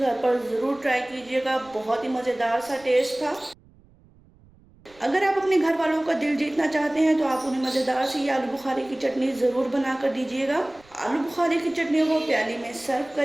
पर ज़रूर ट्राई कीजिएगा, बहुत ही मज़ेदार सा टेस्ट था। अगर आप अपने घर वालों का दिल जीतना चाहते हैं तो आप उन्हें मज़ेदार सी ये आलू बुखारे की चटनी ज़रूर बना कर दीजिएगा। आलू बुखारे की चटनियों को प्याली में सर्व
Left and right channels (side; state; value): right; noise; rumble, 28 dB below the sound